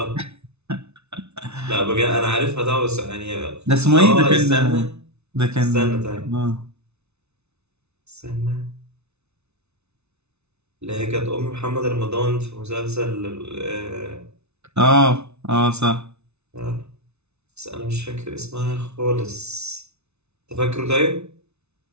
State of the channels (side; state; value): left; late; 0.81 ms